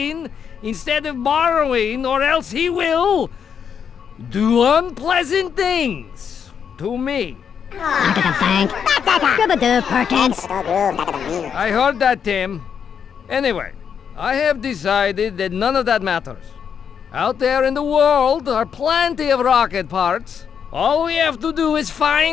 instead of borrowing, or else he will do unpleasant things to me. Back at the bank. Rub-a-doo, Perkins. I heard that, Tim. Anyway, I have decided that none of that matters. Out there in the world are plenty of rocket parts. All we have to do is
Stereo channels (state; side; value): quieter; right; 7.4 dB